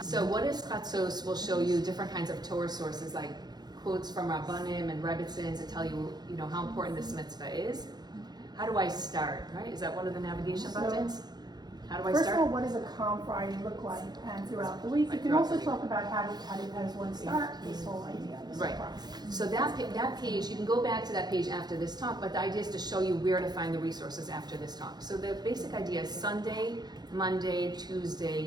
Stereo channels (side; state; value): left; late; 0.20 ms